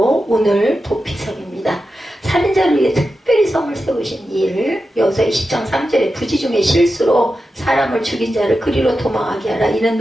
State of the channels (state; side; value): normal; both; correlation 0.91